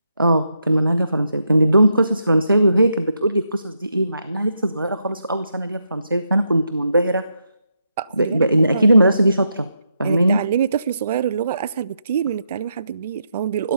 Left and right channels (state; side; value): inverted; both; correlation -0.82